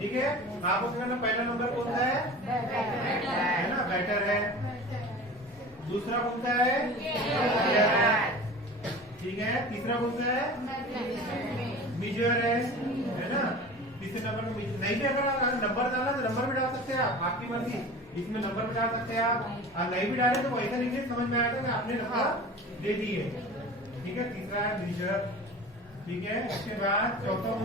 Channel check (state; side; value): normal; both; correlation 0.37